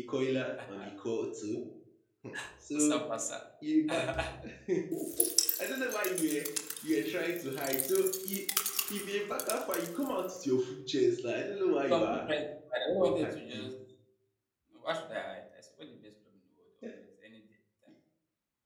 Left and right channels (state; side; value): identical; both; correlation 1.00